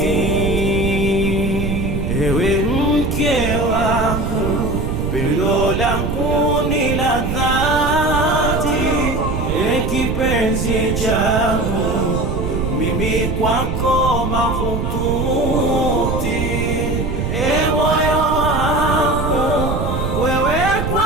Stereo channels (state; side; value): noise; right; rumble, 2 dB below the sound